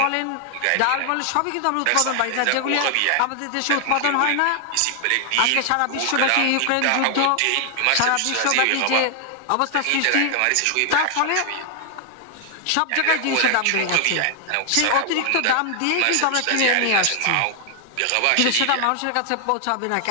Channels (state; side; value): different; both; correlation 0.00